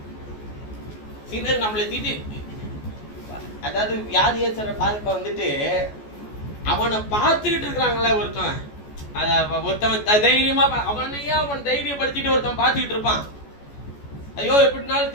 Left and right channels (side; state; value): right; late; 14 ms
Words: சிலர் நம்மளை திட்டி, அதாவது வியாதியேசரை பார்க்க வந்துட்டு அவனை பார்த்துக்கிட்டு இருக்கிறாங்களே ஒருத்தவன் தைரியமா அவனையா அவன் தைரியப்படுத்திட்டு ஒருத்தன் பார்த்துக்கிட்டு இருப்பான். ஐயோ எப்படினாலும்